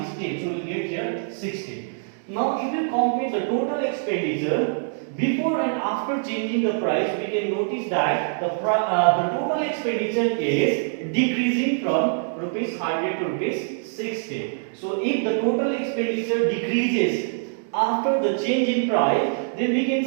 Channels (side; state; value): left; silent; digital silence